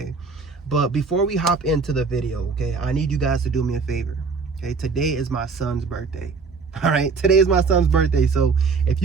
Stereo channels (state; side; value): quieter; left; 4.8 dB